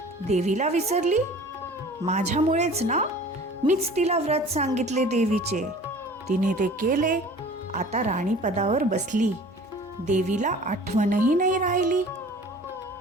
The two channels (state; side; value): normal; both; correlation 0.45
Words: देवीला विसरली. माझ्यामुळेच ना. मीच तिला व्रत सांगितले देवीचे. तिने ते केले. आता राणी पदावर बसली. देवीला आठवणही नाही राहिली.